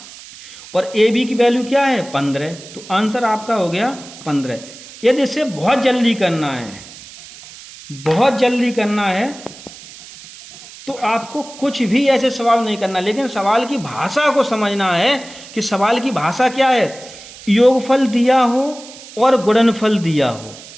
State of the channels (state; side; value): noise; right; hiss, 17 dB below the sound